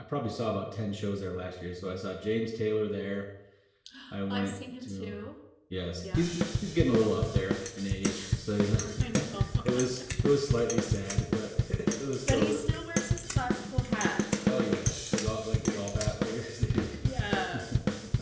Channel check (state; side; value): identical; both; correlation 1.00